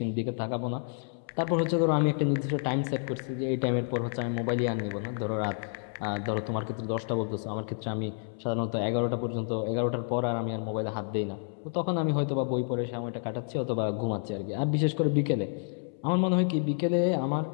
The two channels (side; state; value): right; silent; 58 dB below the other